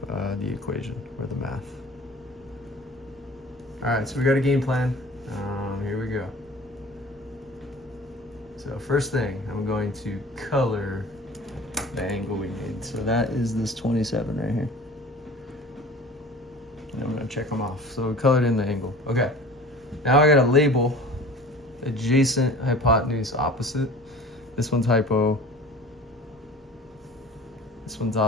the equation or the math. All right, so we got a game plan. Here we go. So first thing, I'm going to color the angle we made. So that is this 27 right here. And I'm gonna check them off. So we colored in the angle. Okay. Now I gotta label adjacent, hypotenuse, opposite. This one's hypo. This one's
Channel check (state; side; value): normal; both; correlation 0.43